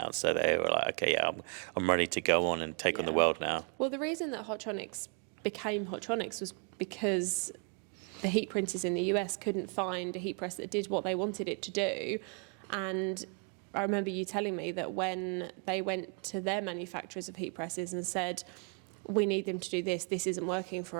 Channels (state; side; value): quieter; left; 38.7 dB